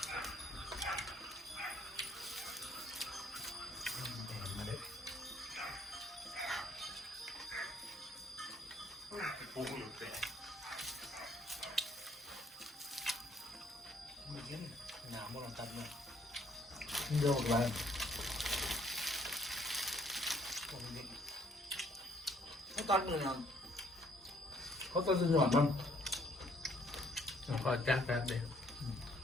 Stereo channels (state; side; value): normal; both; correlation 0.65